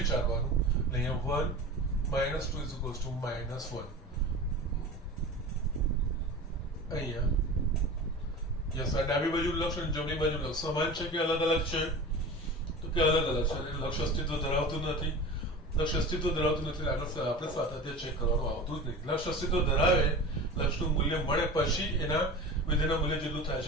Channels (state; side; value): normal; both; correlation 0.33